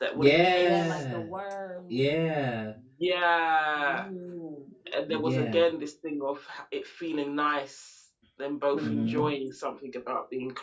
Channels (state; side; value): identical; both; correlation 1.00